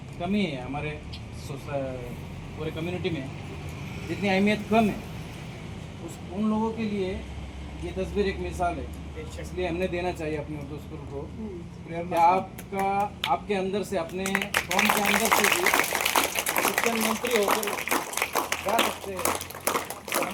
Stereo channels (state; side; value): identical; both; correlation 1.00